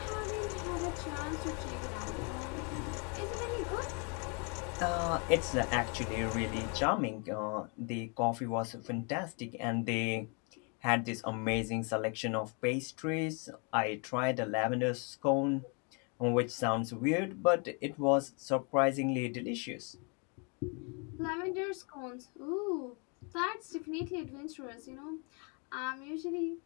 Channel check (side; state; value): right; quieter; 35.4 dB